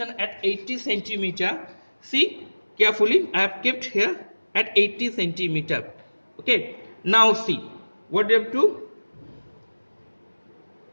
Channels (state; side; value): inverted; both; correlation -1.00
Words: at 80 centimeter. See carefully, I have kept here at 80 centimeter. Okay, now see what you have to